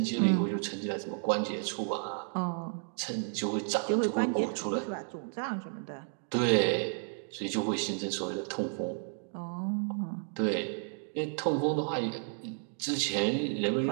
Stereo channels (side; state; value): left; silent; 56 dB below the other